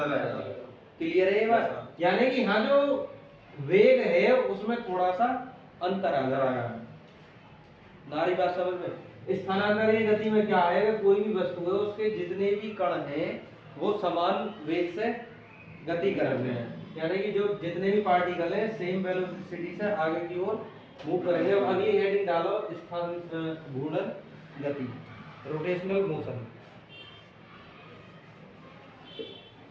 लगेगा। क्लियर है ये बात? यानी कि हाँ, जो वेग है उसमें थोड़ा सा अंतर आ जाएगा। नारी बात समझ में? स्थानांतरीय गति में क्या है? कोई भी वस्तु है, उसके जितने भी कण हैं वो समान वेग से गति कर रहे हैं। यानी कि जो जितने भी पार्टिकल हैं सेम वेलोसिटी से आगे की ओर मूव करेंगे। अब अगली हेडिंग डालो घूर्णन गति, रोटेशनल मोशन।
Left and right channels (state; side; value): identical; both; correlation 1.00